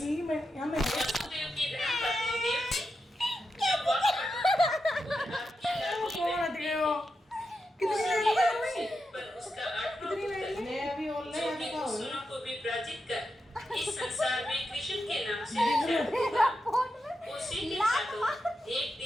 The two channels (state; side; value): normal; both; correlation 0.88